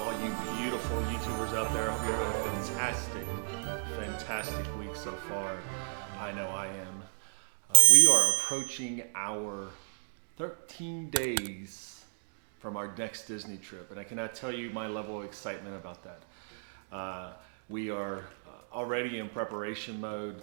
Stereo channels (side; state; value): left; silent; digital silence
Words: all you beautiful YouTubers out there. I hope you're having a fantastic week so far. I know I am. We are approaching our 13 days from our next Disney trip, and I cannot tell you my level of excitement about that. We are already in preparation mode,